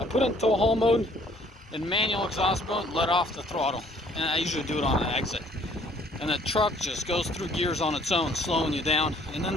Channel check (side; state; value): both; normal; correlation 0.60